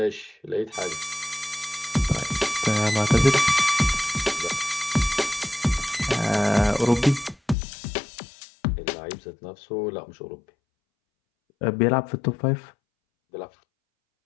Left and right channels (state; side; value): drops out; right; at 7.6 s